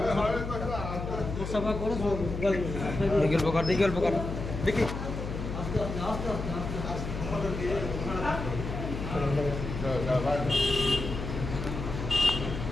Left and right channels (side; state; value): left; noise; hum, 6 dB below the sound